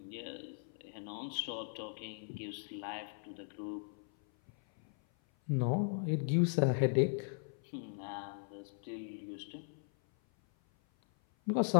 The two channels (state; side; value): silent; right; 52 dB below the other